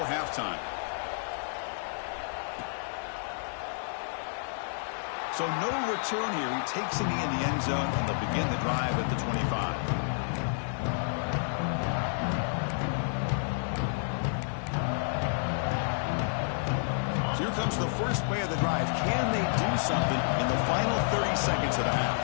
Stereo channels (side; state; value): right; silent; 56 dB below the other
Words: halftime. So no return here. He takes a knee in the end zone, and they'll begin the drive at the 25. Here comes the first play of the drive. Can they do something in the final 30 seconds of the half?